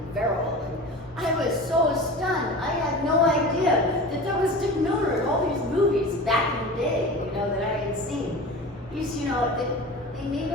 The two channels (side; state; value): both; normal; correlation 0.34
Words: virile. And I was so stunned. I had no idea that there was Dick Miller in all these movies back in the day, you know, that I had seen. He's, you know, they made